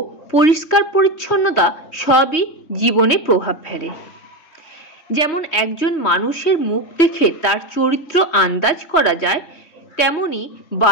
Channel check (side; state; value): right; late; 3.1 ms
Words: পরিষ্কার পরিচ্ছন্নতা সবই জীবনে প্রভাব ফেলে। যেমন একজন মানুষের মুখ দেখে তার চরিত্র আন্দাজ করা যায়, তেমনি